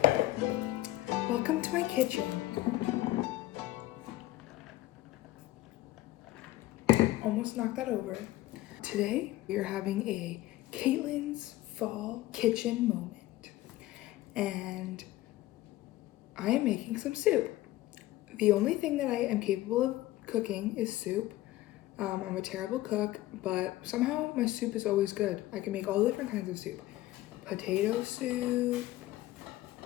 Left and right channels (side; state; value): right; quieter; 16.3 dB